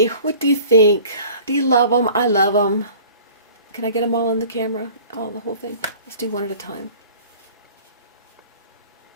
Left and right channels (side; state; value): both; inverted; correlation -0.45